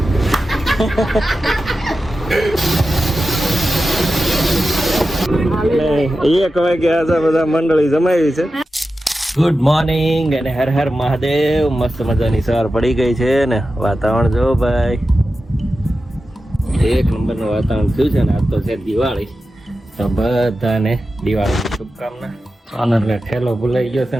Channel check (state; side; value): normal; both; correlation 0.92